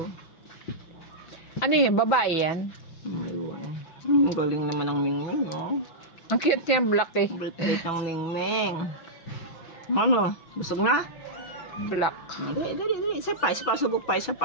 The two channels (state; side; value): late; right; 5.9 ms